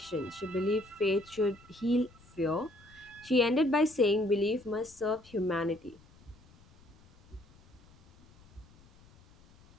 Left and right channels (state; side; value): noise; left; rumble, 26 dB below the sound